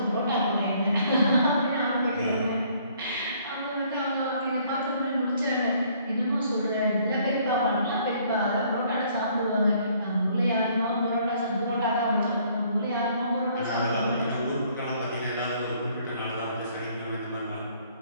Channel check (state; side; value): inverted; both; correlation -0.62